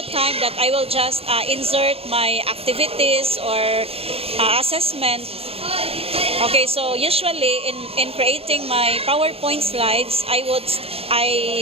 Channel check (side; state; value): left; late; 0.28 ms